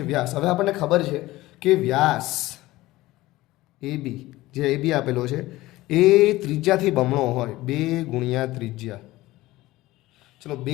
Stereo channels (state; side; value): quieter; right; 18.0 dB